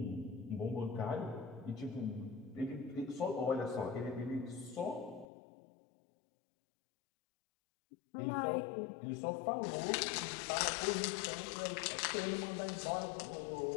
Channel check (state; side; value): drops out; right; at 5.2 s